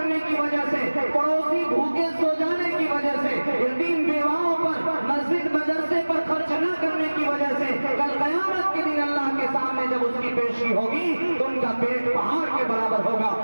کی وجہ سے، پڑوسی بھوکے سو جانے کی وجہ سے، یتیم بیواؤں پر، مسجد مدرسے پر خرچ نہ کرنے کی وجہ سے، کل قیامت کے دن اللہ کے سامنے جب اس کی پیشی ہوگی تو ان کا پیٹ پہاڑ کے برابر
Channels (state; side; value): inverted; both; correlation -1.00